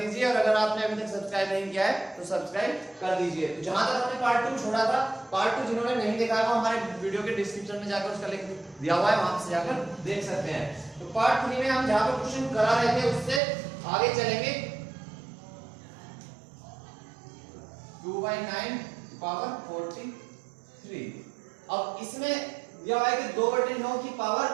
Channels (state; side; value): drops out; left; at 13.4 s